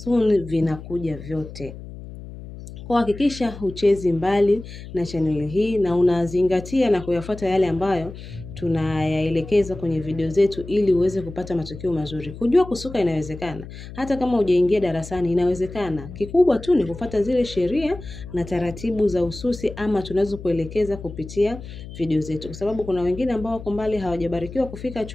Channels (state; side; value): noise; left; hum, 13 dB below the sound